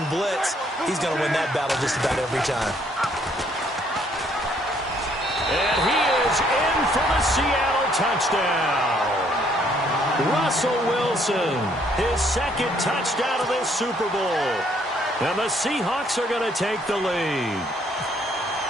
blitz, he's going to win that battle just about every time. And he is in for the Seattle touchdown. Russell Wilson, his 2nd touchdown of this Super Bowl. And the Seahawks are going to take the lead.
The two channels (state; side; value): normal; both; correlation 0.66